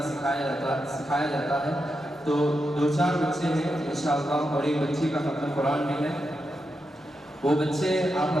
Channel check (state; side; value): normal; both; correlation 0.86